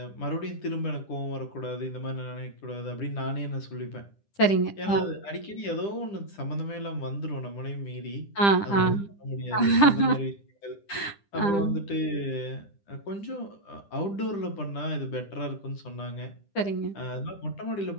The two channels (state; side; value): late; right; 10 ms